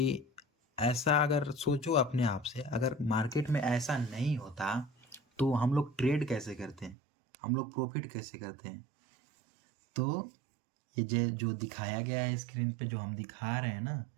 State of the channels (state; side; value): drops out; left; at 7.0 s